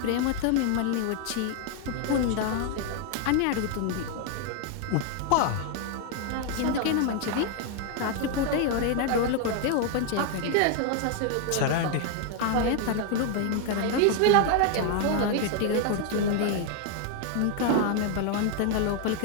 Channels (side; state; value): both; different; correlation 0.00